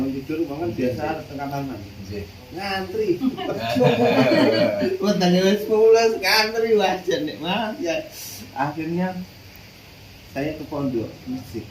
tidur bangun biasa tengah kamar mandi. Ngantri. Wah, tanggal 10 ngantri wajar nih, Mas. Ya. Akhirnya saya ke pondok musik.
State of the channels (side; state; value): both; identical; correlation 1.00